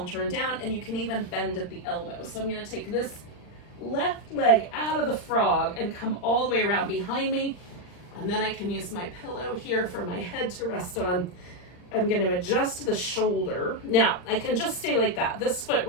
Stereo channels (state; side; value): late; right; 39 ms